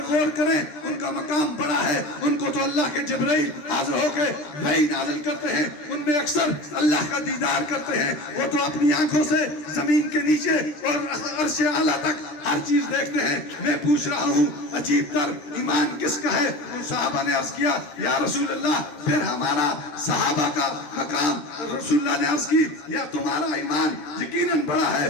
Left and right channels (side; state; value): right; late; 13 ms